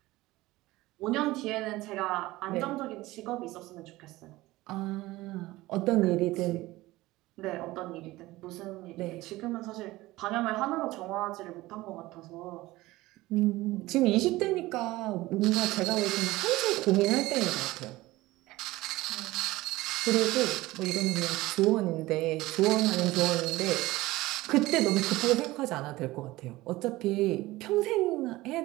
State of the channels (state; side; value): quieter; left; 18.6 dB